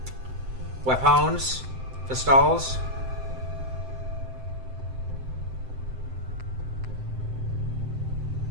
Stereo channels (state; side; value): late; left; 7.7 ms